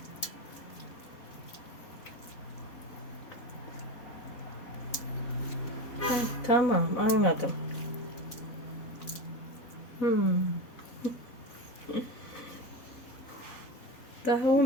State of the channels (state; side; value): late; right; 4.0 ms